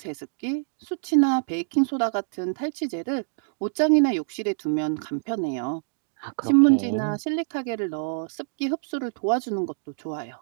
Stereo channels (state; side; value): silent; left; digital silence